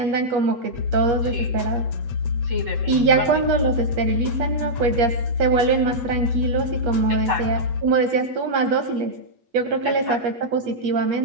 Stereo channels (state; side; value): late; left; 8.4 ms